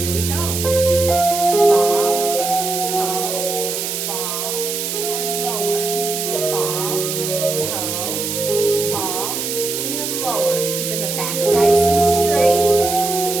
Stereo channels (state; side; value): noise; right; hiss, 3 dB below the sound